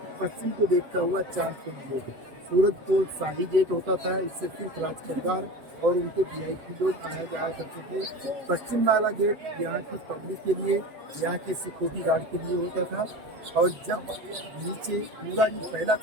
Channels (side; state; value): left; late; 7.9 ms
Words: पश्चिम को देखता हुआ चांदकोट गेट। सूरजकोट शाही गेट होता था, इससे सिर्फ राज परिवार और उनके VIP लोग आया जाया करते थे। पश्चिम वाला गेट यहाँ की पब्लिक के लिए, यहाँ के सिक्योरिटी गार्ड के लिए होता था। और जब नीचे पूरा ये पहला